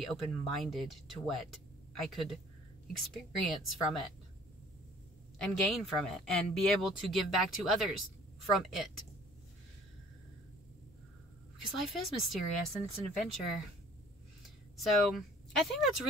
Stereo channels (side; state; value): both; normal; correlation 0.53